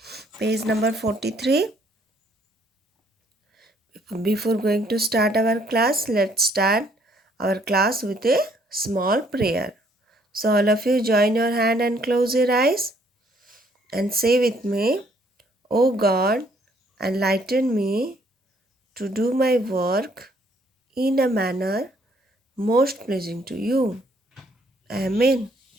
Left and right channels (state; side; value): normal; both; correlation 0.65